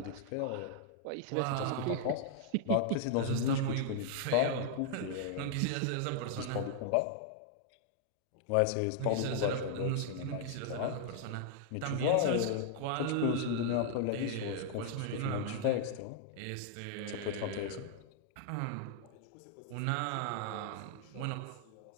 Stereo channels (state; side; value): different; both; correlation -0.01